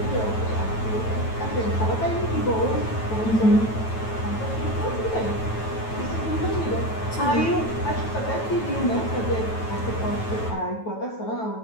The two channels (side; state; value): right; late; 9.2 ms